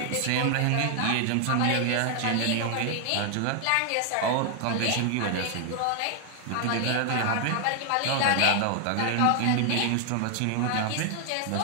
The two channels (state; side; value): different; both; correlation 0.00